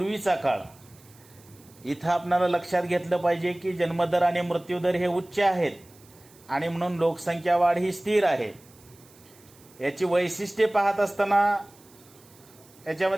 काळ. इथं आपल्याला लक्षात घेतलं पाहिजे की जन्मदर आणि मृत्यूदर हे उच्च आहेत आणि म्हणून लोकसंख्या वाढ ही स्थिर आहे. याची वैशिष्ट्ये पाहत असताना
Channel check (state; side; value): noise; right; hiss, 26 dB below the sound